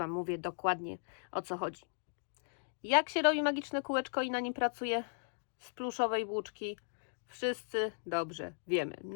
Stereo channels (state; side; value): silent; right; digital silence